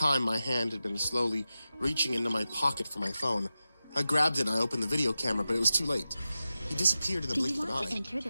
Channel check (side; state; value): both; inverted; correlation -0.93